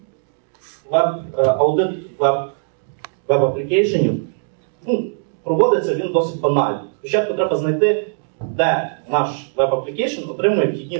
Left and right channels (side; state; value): left; silent; digital silence